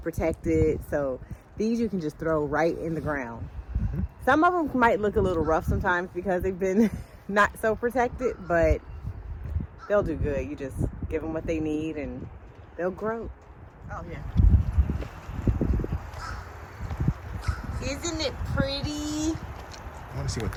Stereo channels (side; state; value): both; identical; correlation 1.00